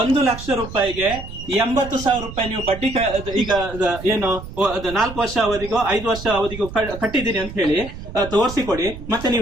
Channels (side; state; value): right; noise; rumble, 12 dB below the sound